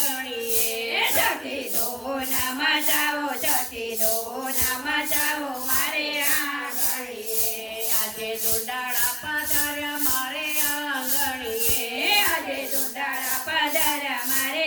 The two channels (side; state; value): both; identical; correlation 1.00